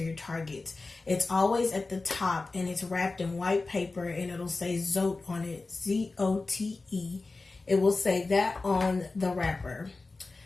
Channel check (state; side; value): quieter; right; 3.6 dB